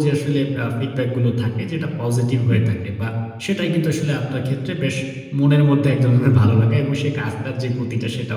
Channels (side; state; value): both; identical; correlation 1.00